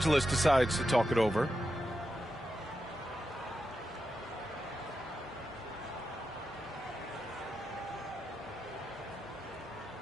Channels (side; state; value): both; normal; correlation 0.88